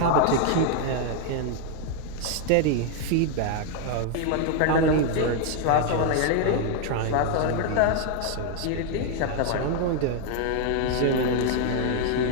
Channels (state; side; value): different; both; correlation 0.00